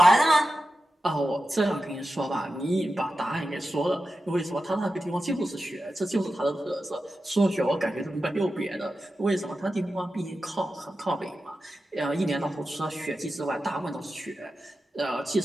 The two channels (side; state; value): both; normal; correlation 0.92